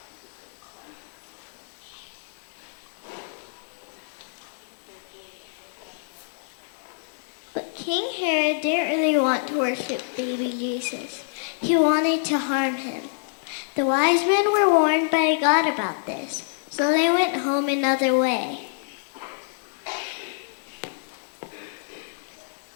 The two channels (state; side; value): silent; right; digital silence